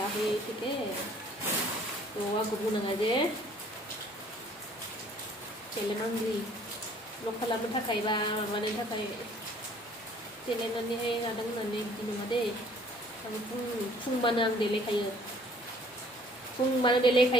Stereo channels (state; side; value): normal; both; correlation 0.57